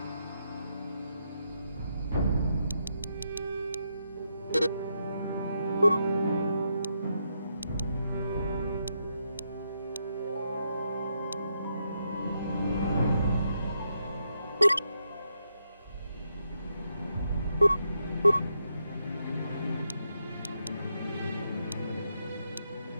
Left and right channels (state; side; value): inverted; both; correlation -0.81